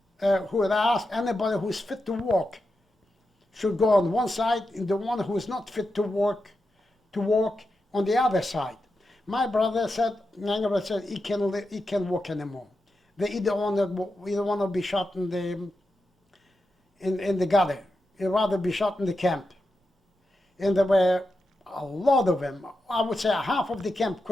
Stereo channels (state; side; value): normal; both; correlation 0.89